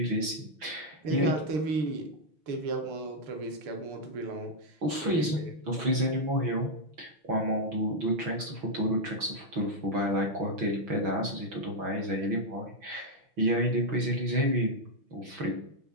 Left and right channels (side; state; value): left; late; 6.1 ms